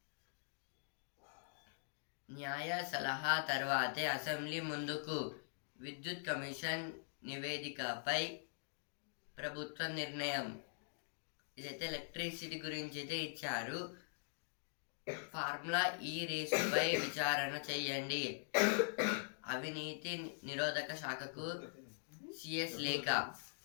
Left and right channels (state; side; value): silent; right; digital silence